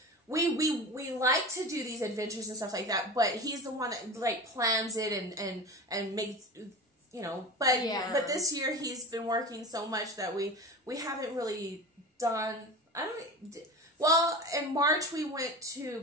we like to do these adventures and stuff like that. But he's the one that like plans it and makes But this year he's been working so much that we haven't really done. Well, in March we went to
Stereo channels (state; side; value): normal; both; correlation 0.30